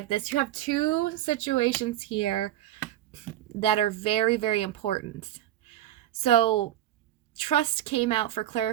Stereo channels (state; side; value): quieter; left; 13.0 dB